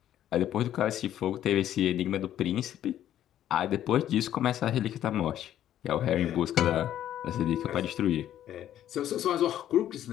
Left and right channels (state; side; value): quieter; right; 11.5 dB